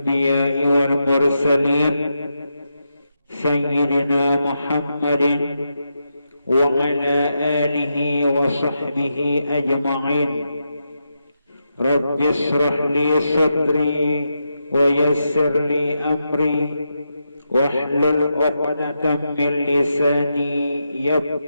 والمرسلين سيدنا محمد وعلى آله وصحبه أجمعين. رب اشرح لي صدري ويسر لي أمري واحلل عقدة من لساني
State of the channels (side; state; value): both; inverted; correlation -0.86